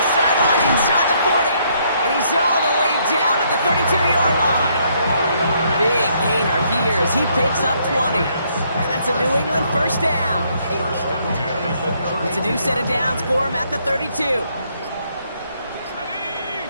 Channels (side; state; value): both; inverted; correlation -0.70